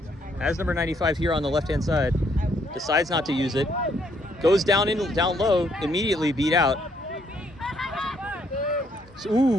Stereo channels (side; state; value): both; normal; correlation 0.70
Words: Has number 95 here on the left-hand side. Decides not to use it. Goes down low, immediately beat out. So,